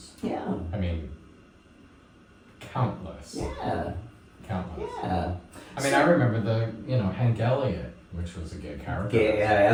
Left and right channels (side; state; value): both; identical; correlation 1.00